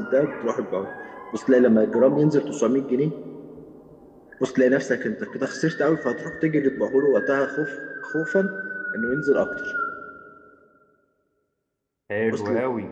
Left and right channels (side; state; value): both; identical; correlation 1.00